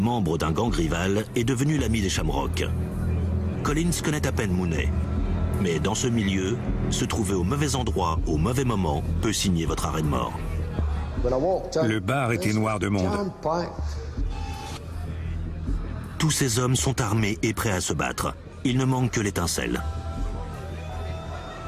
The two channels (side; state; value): both; identical; correlation 1.00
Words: d'un gang rival est devenu l'ami des Shamrock. Collins connaît à peine Mooney. Mais dans ce milieu, se trouver au mauvais endroit, au mauvais moment, peut signer votre arrêt de mort. Le bar était noir de monde. Tous ces hommes sont armés et prêts à se battre. Il ne manque que l'étincelle.